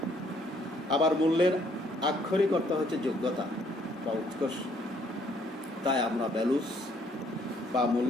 আবার মূল্যের আক্ষরিক অর্থ হচ্ছে যোগ্যতা বা উৎকর্ষ। তাই আমরা ভ্যালুস বা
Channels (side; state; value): both; normal; correlation 0.65